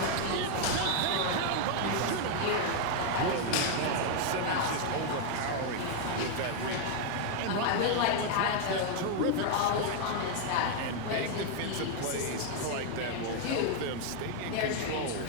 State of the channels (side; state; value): both; different; correlation 0.00